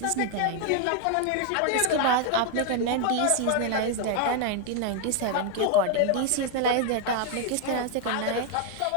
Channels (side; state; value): both; different; correlation 0.00